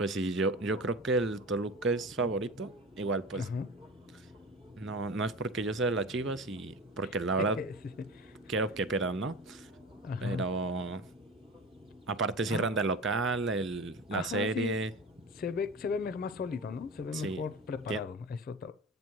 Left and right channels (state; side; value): normal; both; correlation 0.32